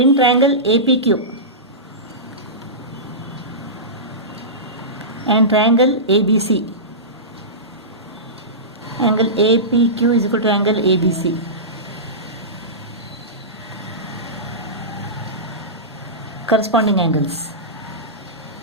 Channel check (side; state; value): both; normal; correlation -0.18